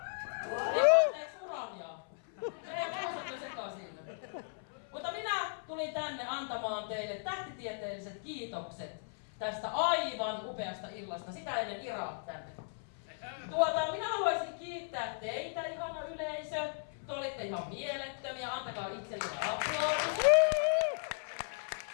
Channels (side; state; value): right; silent; 54 dB below the other